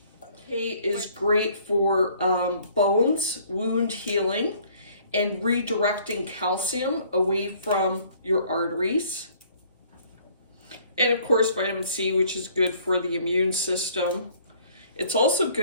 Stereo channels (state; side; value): inverted; both; correlation -0.58